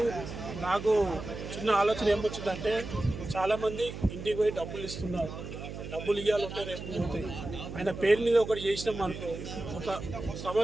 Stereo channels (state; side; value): noise; right; hum, 9 dB below the sound